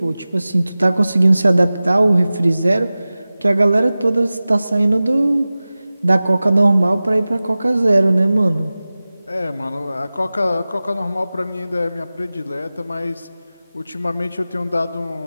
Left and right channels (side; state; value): both; inverted; correlation -0.97